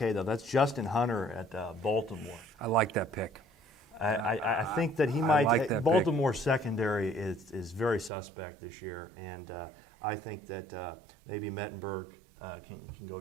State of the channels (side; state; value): left; drops out; at 8.1 s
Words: though. That's Justin Hunter at Baltimore. I like that pick. I think that he might. like that Baltimore's secondary is very suspect this year, and I think that maybe Mettenberg can go